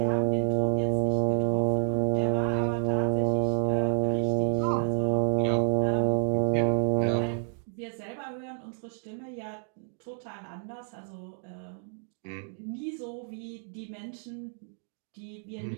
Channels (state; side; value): silent; left; digital silence